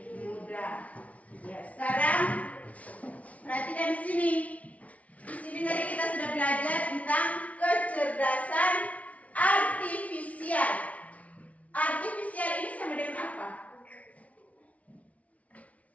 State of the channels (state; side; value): late; right; 0.067 ms